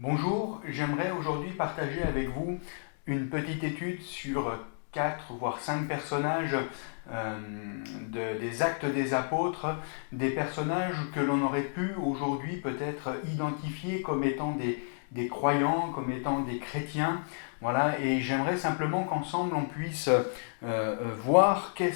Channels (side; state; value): right; silent; digital silence